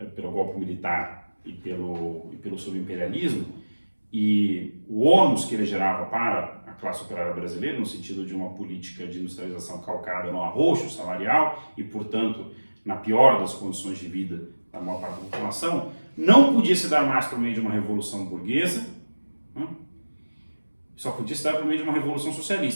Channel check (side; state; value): both; inverted; correlation -1.00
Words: pelo golpe militar e pelo subimperialismo, e o ônus que ele gerava para a classe operária brasileira, no sentido de uma política de industrialização calcada no arroxo salarial e, portanto, na pior das condições de vida da maior parte da população, não podia se dar mais por meio de uma revolução burguesa, né? Só podia se dar por meio de uma revolução